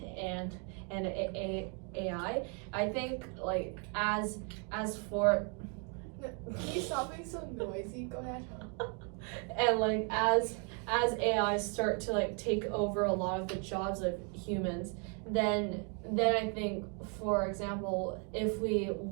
AI, I think like as for Can you stop being so noisy? Go ahead. and like as AI start to like take over a lot of the jobs of humans, then I think, for example, if we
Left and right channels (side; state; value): left; quieter; 38.0 dB